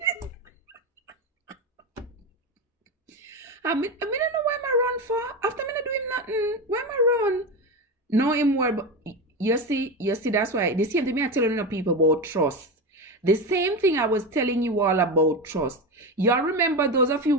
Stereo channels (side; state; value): both; normal; correlation 0.19